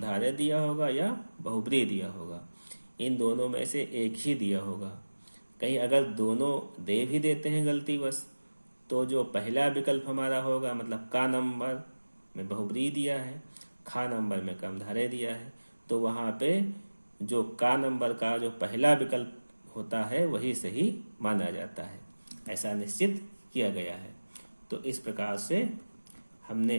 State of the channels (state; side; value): inverted; both; correlation -1.00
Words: दिया होगा या बहुब्रीहि दिया होगा। इन दोनों में से एक ही दिया होगा। कहीं अगर दोनों दे भी देते हैं गलतीवश तो जो पहला विकल्प हमारा होगा, मतलब का नंबर में बहुब्रीहि दिया है, खा नंबर में कर्मधारय दिया है, तो वहाँ पे जो का नंबर का जो पहला विकल्प होता है वही सही माना जाता है। ऐसा निश्चित किया गया है। तो इस प्रकार से हमने